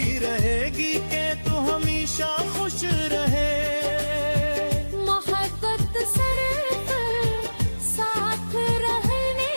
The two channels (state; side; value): inverted; both; correlation -1.00